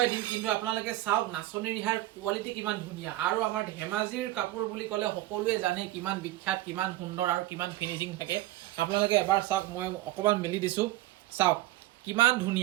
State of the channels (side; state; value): left; quieter; 16.5 dB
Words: দিম। কিন্তু আপোনালোকে চাওক নাচনী ৰিহাৰ কোৱালিটি কিমান ধুনীয়া। আৰু আমাৰ ধেমাজিৰ কাপোৰ বুলি ক'লে সকলোৱে জানে কিমান বিখ্যাত, কিমান সুন্দৰ আৰু কিমান ফিনিচিং থাকে। আপোনালোকে এবাৰ চাওক, মই অকণমান মেলি দিছোঁ, চাওক কিমান